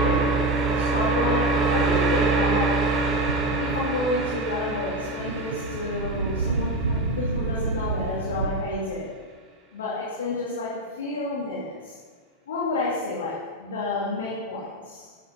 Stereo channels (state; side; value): normal; both; correlation 0.14